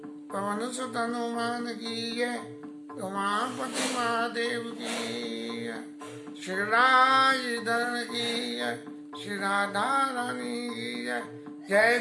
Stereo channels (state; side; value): identical; both; correlation 1.00